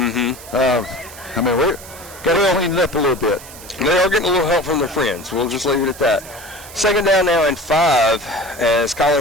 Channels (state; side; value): noise; right; hiss, 17 dB below the sound